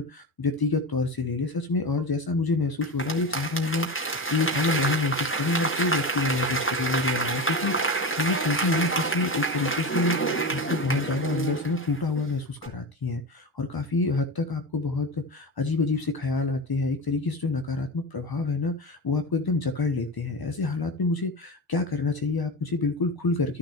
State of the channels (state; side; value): normal; both; correlation 0.23